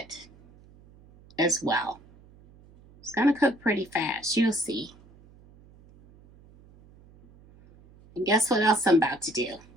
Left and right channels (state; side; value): noise; right; hum, 26 dB below the sound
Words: as well. It's going to cook pretty fast. You'll see. And guess what else I'm about to do?